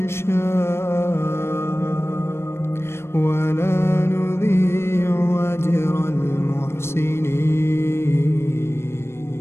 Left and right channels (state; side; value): late; right; 0.12 ms